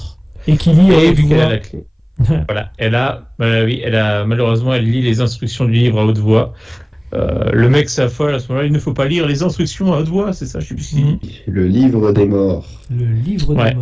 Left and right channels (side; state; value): both; identical; correlation 1.00